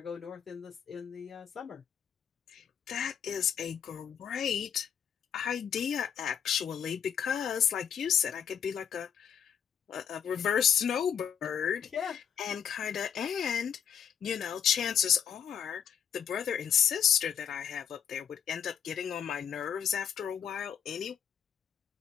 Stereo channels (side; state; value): right; quieter; 8.2 dB